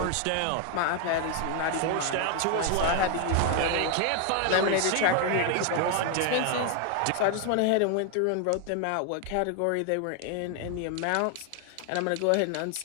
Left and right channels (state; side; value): different; both; correlation 0.00